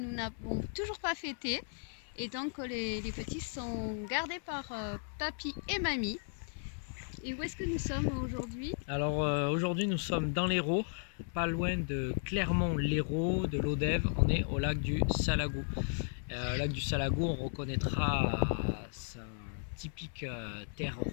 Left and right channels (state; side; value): silent; right; 54 dB below the other